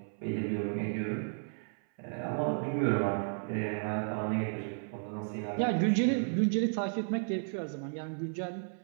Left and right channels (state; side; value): silent; left; 56 dB below the other